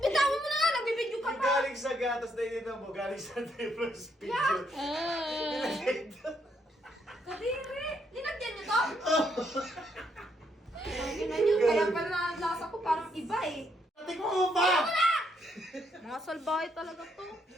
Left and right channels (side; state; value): both; normal; correlation 0.74